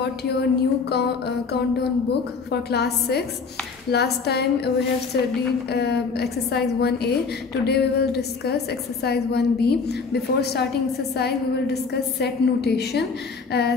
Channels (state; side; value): quieter; right; 4.9 dB